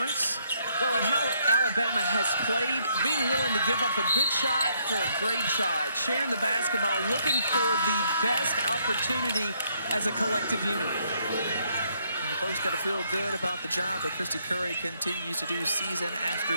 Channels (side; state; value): both; inverted; correlation -0.71